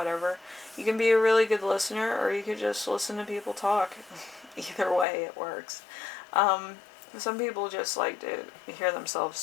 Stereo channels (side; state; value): right; drops out; at 5.1 s